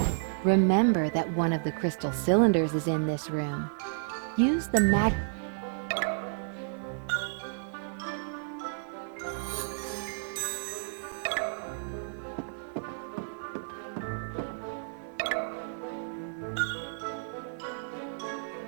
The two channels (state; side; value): silent; left; 57 dB below the other